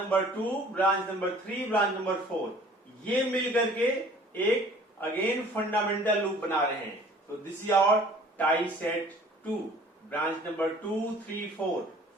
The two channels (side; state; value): both; normal; correlation 0.51